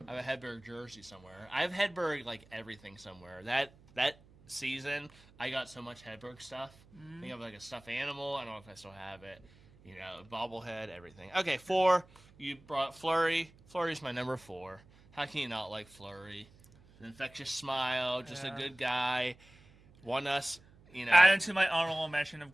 I have a Hedberg jersey somewhere. I have Hedberg like everything somewhere. That season, I got so much Hedberg stuff. I think I have like a stuffed animal. I don't know if I still have it. You know, bobblehead, everything. Okay, 4. You brought Fleury. Fleury's my number 4. How can you not like Fleury? An infectious smile, just a good guy. Won us, you know. Adding to my honorable mention of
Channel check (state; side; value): noise; right; hum, 26 dB below the sound